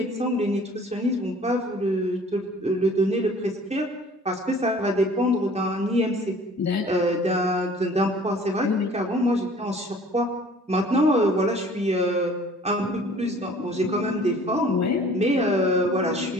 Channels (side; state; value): both; normal; correlation 0.51